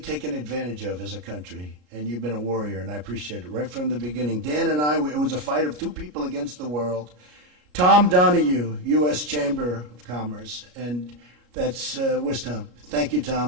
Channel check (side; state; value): left; late; 33 ms